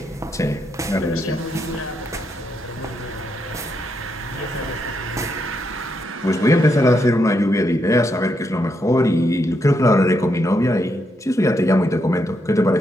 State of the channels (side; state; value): both; normal; correlation 0.80